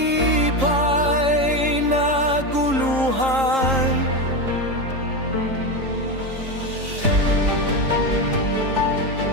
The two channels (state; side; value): late; left; 3.7 ms